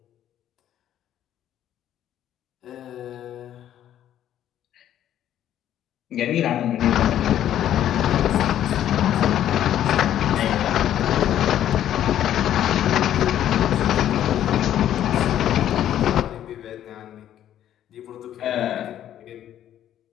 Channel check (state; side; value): quieter; right; 11.3 dB